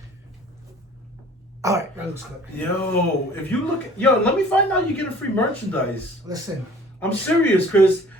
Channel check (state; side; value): normal; both; correlation 0.50